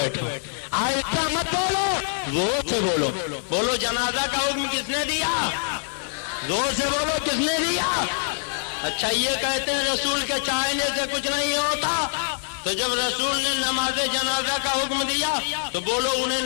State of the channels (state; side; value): silent; right; digital silence